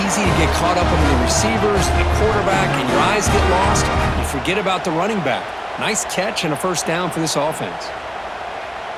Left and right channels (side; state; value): both; identical; correlation 1.00